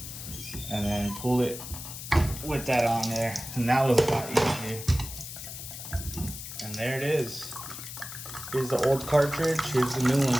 and then pull it with that on there. And that was a lot easier. And there it is. Here's the old cartridge, here's the new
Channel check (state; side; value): noise; left; hiss, 10 dB below the sound